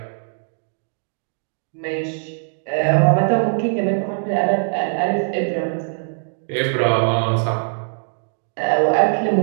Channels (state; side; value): silent; left; digital silence